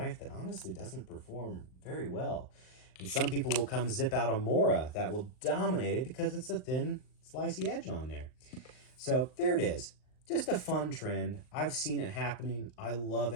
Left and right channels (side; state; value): right; late; 39 ms